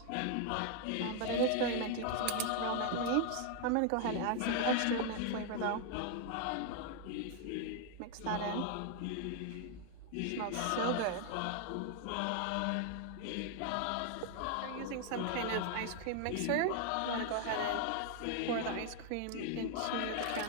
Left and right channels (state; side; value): different; both; correlation 0.00